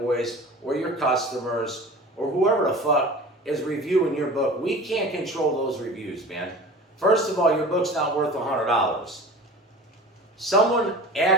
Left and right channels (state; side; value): normal; both; correlation 0.39